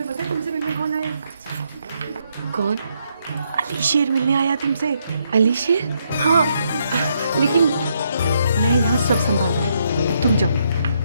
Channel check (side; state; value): both; inverted; correlation -0.75